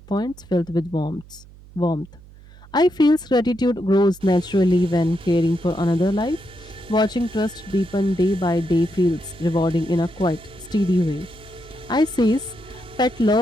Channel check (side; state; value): right; noise; hum, 22 dB below the sound